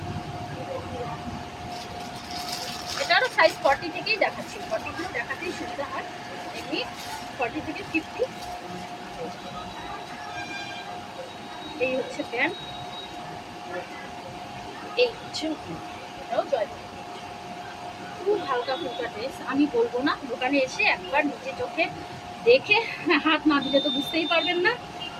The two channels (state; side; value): identical; both; correlation 1.00